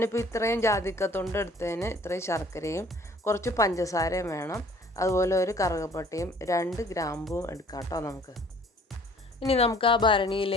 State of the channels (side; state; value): both; normal; correlation 0.54